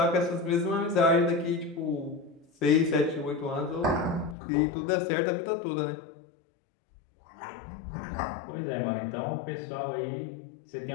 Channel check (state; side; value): drops out; right; at 4.4 s